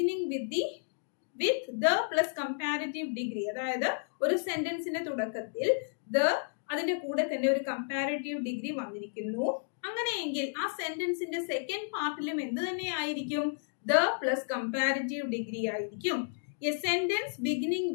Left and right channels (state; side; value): silent; right; digital silence